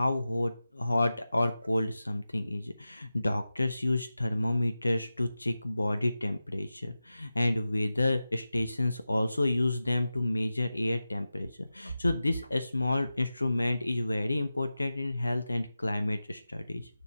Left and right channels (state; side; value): inverted; both; correlation -0.94